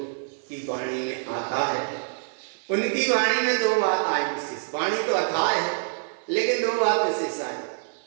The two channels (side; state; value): left; silent; digital silence